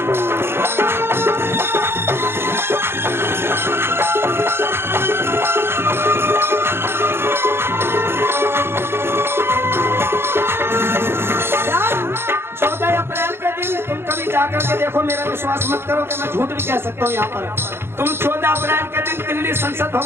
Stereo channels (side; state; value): left; late; 0.11 ms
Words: जाकर के देखो, मेरा विश्वास मत करो कि मैं झूठ भी कह सकता हूँ। यहाँ पर तुम 14 अप्रैल के दिन दिल्ली संसद